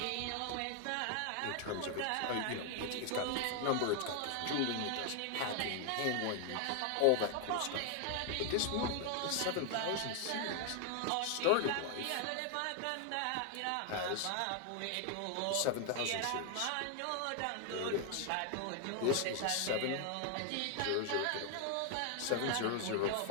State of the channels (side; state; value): both; different; correlation 0.00